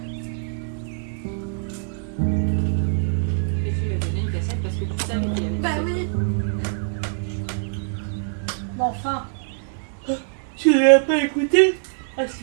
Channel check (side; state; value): left; silent; digital silence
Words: Et tu lui as donné une cassette parce que tu savais qu'il avait Bah ce oui. tu l'as pas écouté? Ah